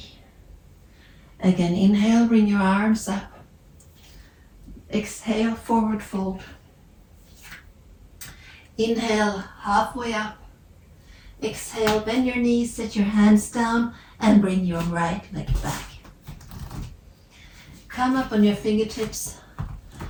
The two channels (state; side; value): identical; both; correlation 1.00